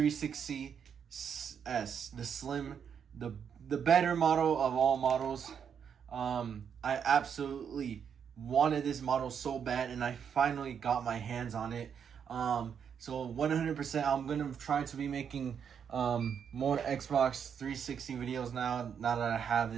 the slim, the better model of all models. I absolutely wanted this model so bad, and I finally got my hands on it. So 100%, I'm gonna try to be making more Xbox 360 videos now. Now that I have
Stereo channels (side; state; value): left; quieter; 7.5 dB